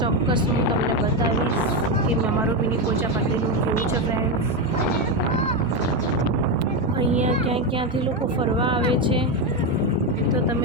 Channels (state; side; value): normal; both; correlation 0.10